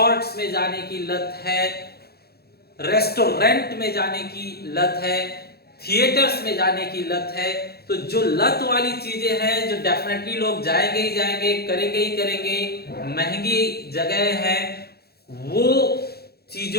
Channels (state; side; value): late; right; 0.46 ms